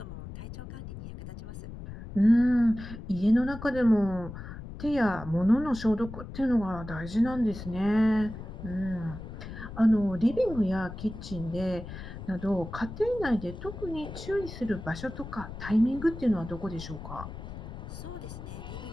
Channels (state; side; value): noise; left; rumble, 11 dB below the sound